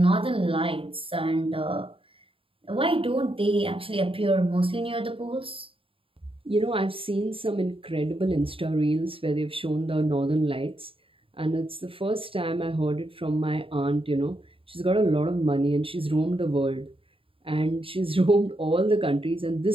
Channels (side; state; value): left; late; 0.26 ms